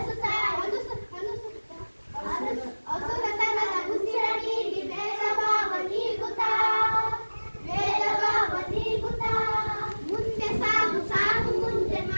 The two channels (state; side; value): inverted; both; correlation -1.00